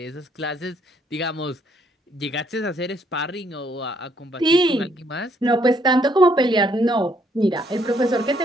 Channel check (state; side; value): normal; both; correlation 0.69